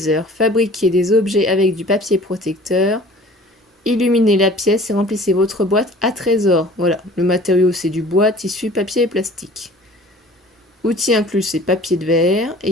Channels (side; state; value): both; normal; correlation 0.48